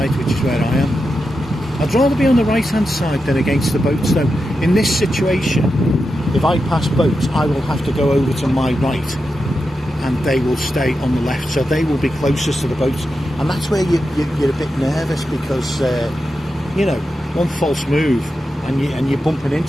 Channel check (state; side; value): normal; both; correlation 0.89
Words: which is where I am. I'd rather be on the right hand side than against the boats though. In this situation, if I pass boats, I will have to go over to my right, and they will stay on the left, so they will be closest to the boats, and that's where you're a bit nervous because you know, one false move and you're bumping